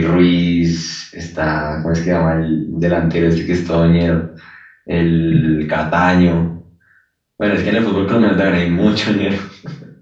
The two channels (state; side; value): identical; both; correlation 1.00